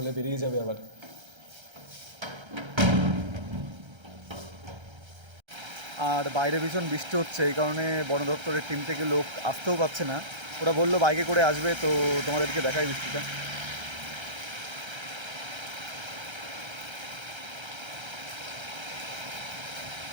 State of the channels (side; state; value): left; late; 1.3 ms